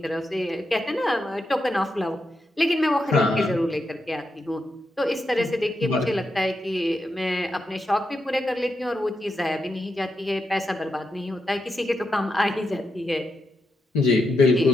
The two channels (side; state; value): both; normal; correlation 0.85